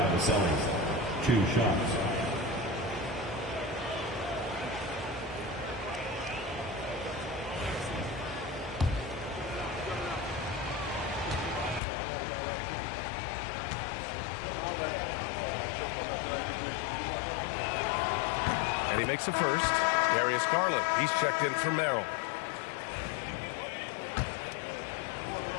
2 shots. And he makes a first. Darius Garland, he's checked in for Merrill.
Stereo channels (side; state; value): right; drops out; at 11.8 s